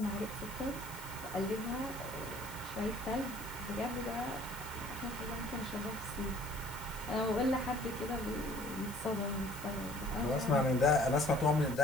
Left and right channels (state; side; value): noise; left; hiss, 14 dB below the sound